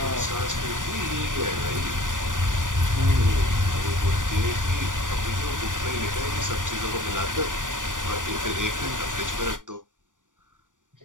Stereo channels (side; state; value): left; late; 0.88 ms